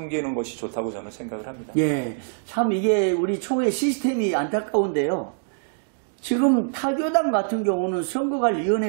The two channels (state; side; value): silent; left; digital silence